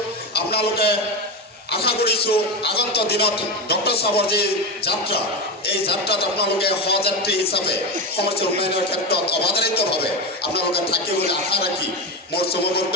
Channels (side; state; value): both; normal; correlation 0.17